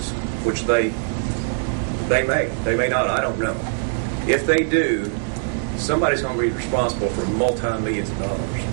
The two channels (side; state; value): left; silent; digital silence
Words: which they may not, I don't know. If they do, somebody's going to be responsible for multi-millions of dollars.